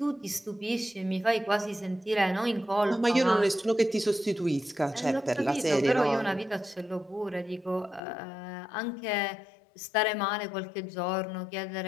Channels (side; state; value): right; drops out; at 8.0 s